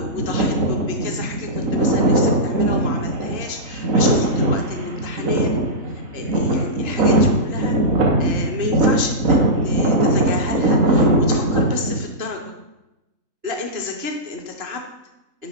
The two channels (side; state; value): left; late; 2.9 ms